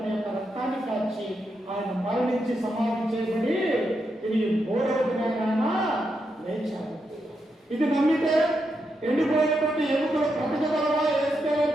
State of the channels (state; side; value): normal; both; correlation 0.83